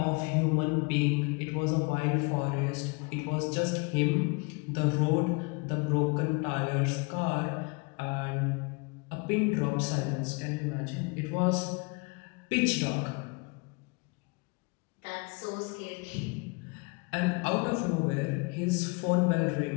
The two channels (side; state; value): right; quieter; 30.1 dB